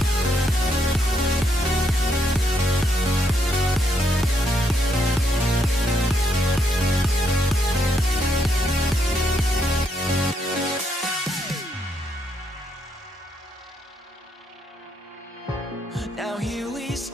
Now here we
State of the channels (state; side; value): normal; both; correlation 0.76